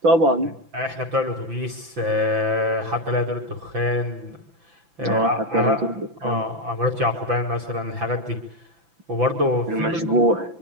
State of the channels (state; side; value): late; left; 5.9 ms